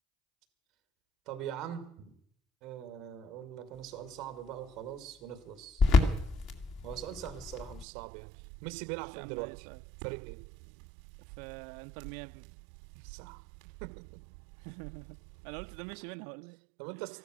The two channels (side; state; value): left; drops out; at 7.9 s